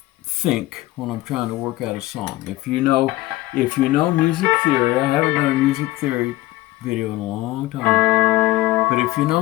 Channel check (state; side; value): quieter; right; 17.9 dB